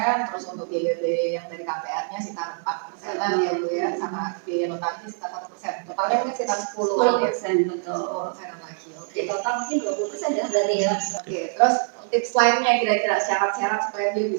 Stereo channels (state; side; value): silent; left; 62 dB below the other